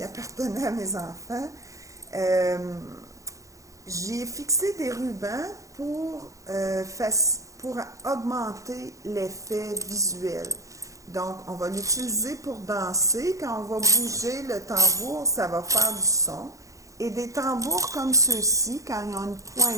appartenait à mes enfants. J'ai fixé des rubans pour augmenter l'effet visuel. Donc, on va l'utiliser pour danser. Quand on va bouger le tambour, ça va faire du son. Et des tambours comme ceux-ci, quand ils ont une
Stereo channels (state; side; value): late; left; 0.16 ms